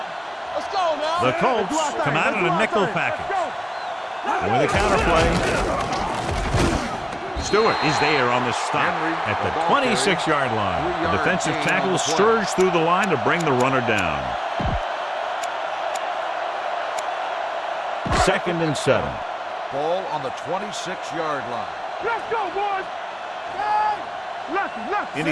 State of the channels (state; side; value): identical; both; correlation 1.00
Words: Let's go now. The Colts come out in a nickel package. And with a counterplay, Stewart is there on the stop at the 26-yard line. The defensive tackle surged through the line to bring the runner down. Second and 7. Ball on the 26-yard line. Let's go, boys.